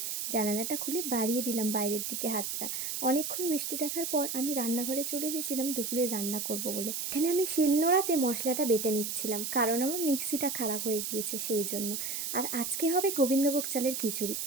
জানালাটা খুলে বাড়িয়ে দিলাম বাইরের দিকে হাতটা। অনেকক্ষণ বৃষ্টি দেখার পর আমি রান্নাঘরে চলে এসেছিলাম দুপুরে রান্না করব বলে। এখানে আমি শিলনোড়াতে মশলাটা বেটে নিচ্ছিলাম, কারণ আমার মিক্সিটা খারাপ হয়ে গিয়েছে সেই জন্য। আর আজকে হবে গোবিন্দভোগ চালের খিচুড়ি।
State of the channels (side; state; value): right; noise; hiss, 3 dB below the sound